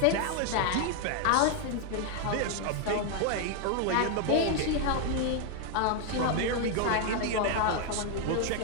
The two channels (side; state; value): both; different; correlation 0.01